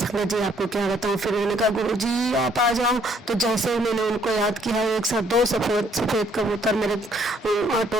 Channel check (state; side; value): normal; both; correlation 0.66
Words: जी आपको क्या बताऊं। फिर उन्होंने कहा गुरु जी आप आ जाओ। तो जैसे ही मैंने उनको याद किया, एक साथ 2 सफेद कबूतर मेरे